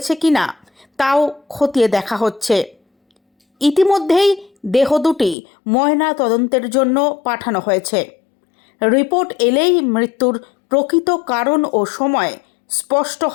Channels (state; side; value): drops out; right; at 5.4 s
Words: কিনা তাও খতিয়ে দেখা হচ্ছে। ইতিমধ্যেই দেহ দুটি ময়না তদন্তের জন্য পাঠানো হয়েছে। রিপোর্ট এলেই মৃত্যুর প্রকৃত কারণ ও সময় স্পষ্ট